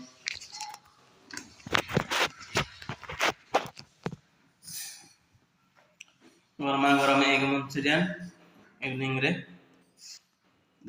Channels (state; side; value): identical; both; correlation 1.00